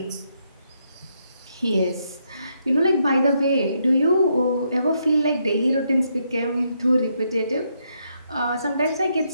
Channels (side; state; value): both; inverted; correlation -0.77